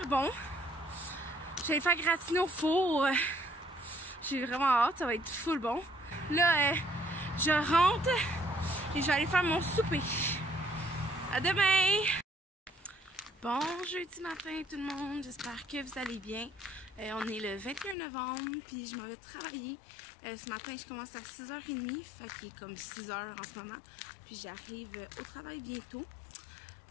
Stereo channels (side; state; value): right; drops out; at 17.9 s